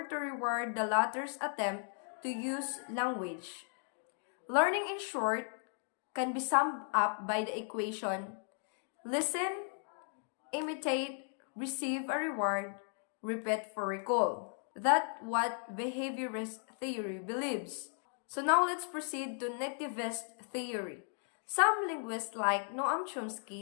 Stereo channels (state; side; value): silent; right; 54 dB below the other